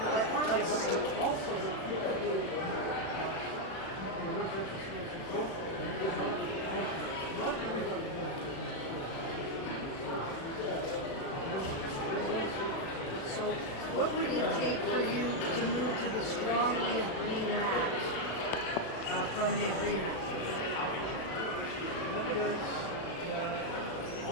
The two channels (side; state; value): right; late; 36 ms